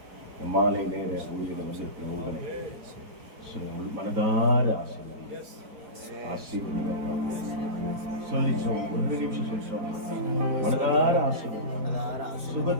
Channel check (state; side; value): late; left; 4.4 ms